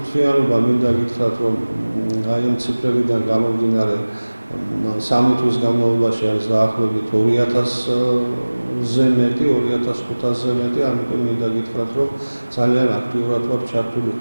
მინდა გითხრათ, რომ აი ამ ციფრებიდან გამომდინარე 3 თვის განმავლობაში არის დაახლოებით 2000-ზე მეტი, 2500-ზე მეტი, ამიტომ მინდა გითხრათ, რომ ძალიან აქტიურად ვარ ჩართული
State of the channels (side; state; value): both; inverted; correlation -1.00